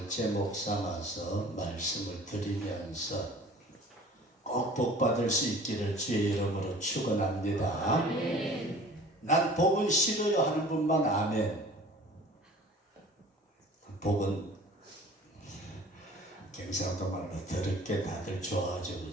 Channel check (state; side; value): normal; both; correlation 0.46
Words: 제목 삼아서 말씀을 드리면서 꼭 복받을 수 있기를 주의 이름으로 축원합니다. 난 복은 싫어요 하는 분만 아멘. 복은 경상도 말로 더럽게 다들 좋아하죠,